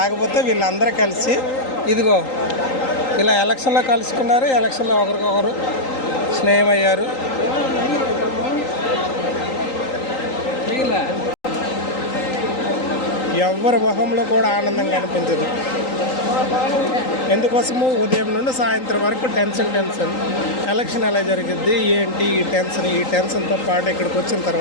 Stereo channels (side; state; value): right; late; 3.8 ms